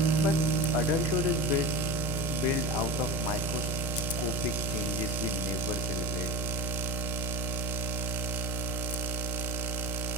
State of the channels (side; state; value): both; normal; correlation 0.26